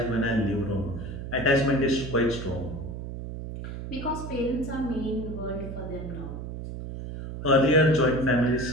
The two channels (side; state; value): right; noise; hum, 8 dB below the sound